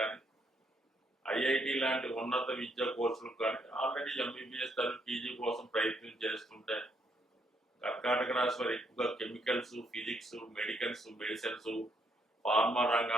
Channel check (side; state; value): both; normal; correlation 0.73